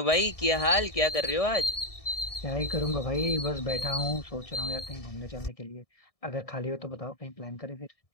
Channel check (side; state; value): right; late; 1.7 ms